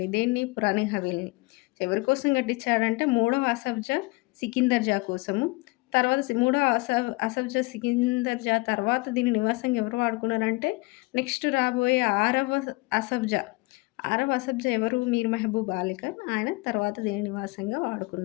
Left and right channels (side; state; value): right; quieter; 24.7 dB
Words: దేన్ని? పురాణి హవేలీని. ఎవరి కోసం కట్టించాడంటే మూడవ ఆసఫ్ జా సికిందర్ జా కోసము. తర్వాత మూడో ఆసఫ్ జా సికిందర్ జా తర్వాత దీన్ని నివాసంగా ఎవరు వాడుకున్నారంటే నెక్స్ట్ రాబోయే ఆరవ ఆసఫ్ జా ఎవరు? మీర్ మెహబూబ్ అలీ ఖాన్. ఆయన తర్వాత దీన్ని నివాసంగా